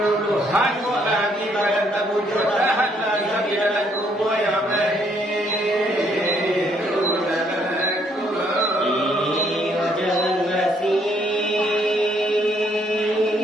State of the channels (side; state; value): both; normal; correlation 0.69